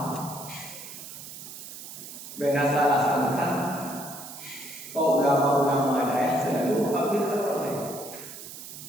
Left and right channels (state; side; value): noise; right; hiss, 12 dB below the sound